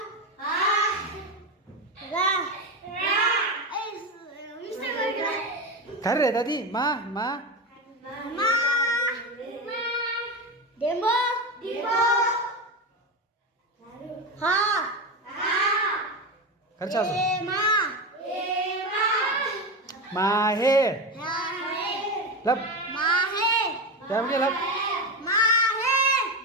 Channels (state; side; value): normal; both; correlation 0.18